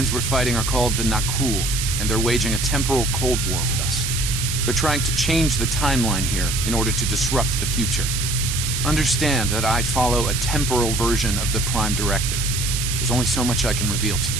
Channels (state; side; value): noise; right; hiss, 2 dB below the sound